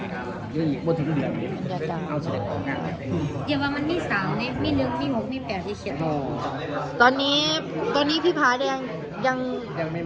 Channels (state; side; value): identical; both; correlation 1.00